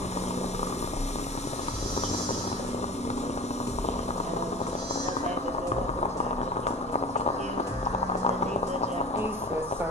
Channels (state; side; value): normal; both; correlation 0.37